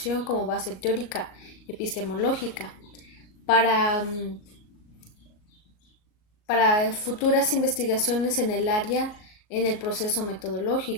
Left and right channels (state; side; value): late; right; 38 ms